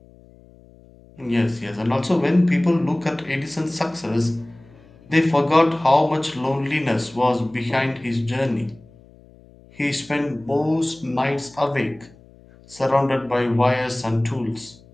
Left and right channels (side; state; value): left; noise; hum, 25 dB below the sound